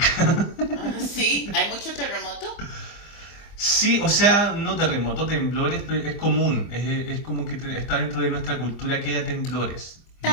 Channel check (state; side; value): late; right; 25 ms